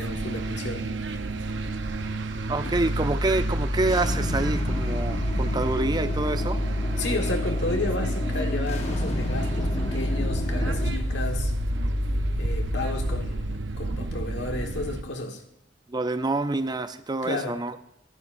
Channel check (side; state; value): both; normal; correlation 0.69